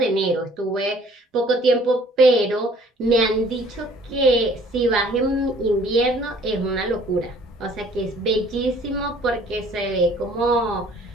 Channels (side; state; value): both; normal; correlation 0.56